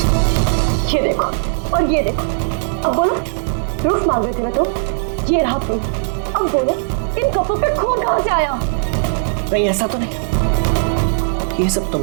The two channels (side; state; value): left; silent; digital silence